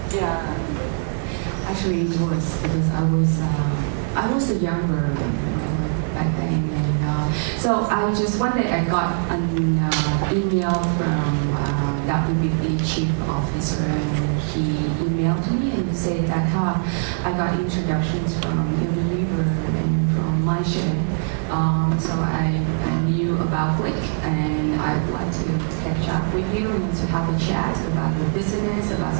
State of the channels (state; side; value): silent; left; 59 dB below the other